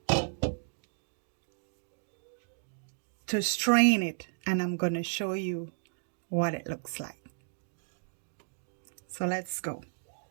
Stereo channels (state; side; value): silent; left; digital silence